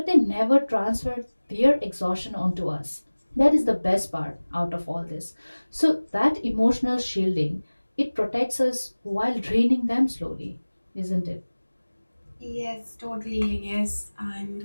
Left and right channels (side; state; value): both; inverted; correlation -1.00